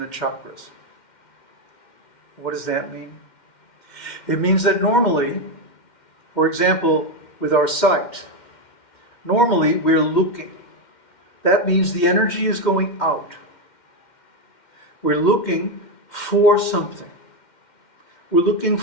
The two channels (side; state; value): right; late; 2.1 ms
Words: chakras. What does that mean? It means that normally, for example, with our sight, normally we're looking. That means the energy is going out. We're looking for something. We're looking